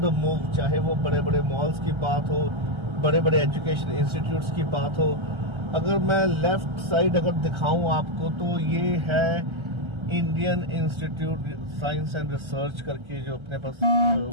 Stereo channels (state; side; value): late; left; 1.3 ms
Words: move. चाहे वो बड़े बड़े मॉल्स की बात हो, बड़े बड़े एजुकेशन इंस्टीट्यूट्स की बात हो। अगर मैं लेफ्ट साइड अगर दिखाऊं आपको, तो ये है Indian institute science and research करके, जो अपने पास